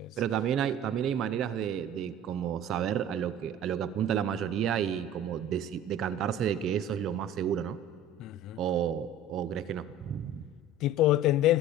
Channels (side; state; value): both; normal; correlation 0.42